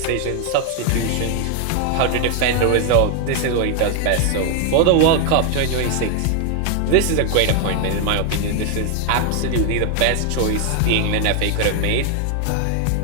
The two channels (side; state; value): both; different; correlation 0.00